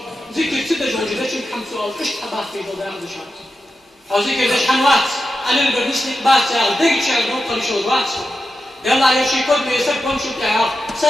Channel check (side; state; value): both; normal; correlation 0.90